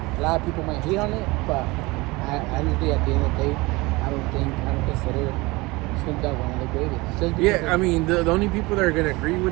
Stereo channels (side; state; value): left; quieter; 22.9 dB